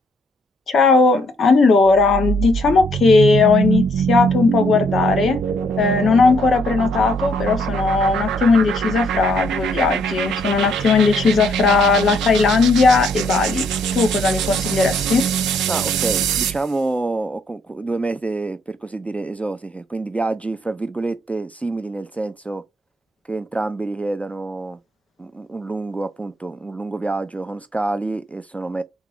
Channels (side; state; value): both; normal; correlation 0.69